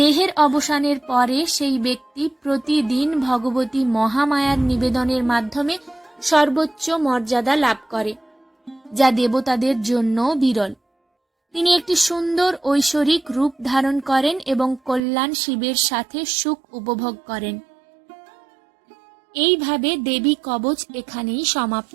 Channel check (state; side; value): drops out; left; at 15.0 s